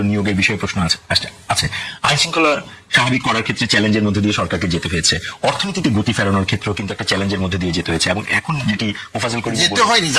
নিয়োগের বিষয়ে প্রশ্ন আছে। আইন শৃঙ্খলা স্বাভাবিক করার ক্ষেত্রে চ্যালেঞ্জের মধ্যে দিয়ে সরকারকে যেতে হয়েছে, অর্থনীতিতে গতি ফেরানোর ক্ষেত্রেও কিন্তু একটা চ্যালেঞ্জের মধ্যে দিয়ে যেতে হয়েছে, এবং এখন যেটি মোফাজ্জল করিম যেতে হয়নি,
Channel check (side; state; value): both; identical; correlation 1.00